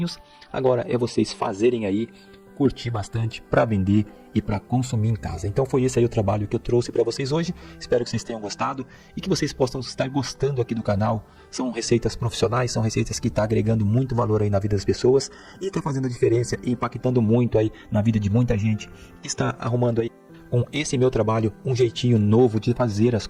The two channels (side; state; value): both; identical; correlation 1.00